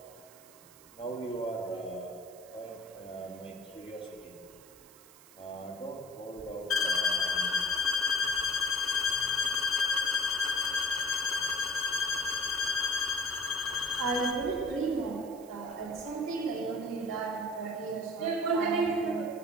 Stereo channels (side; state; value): right; noise; hiss, 22 dB below the sound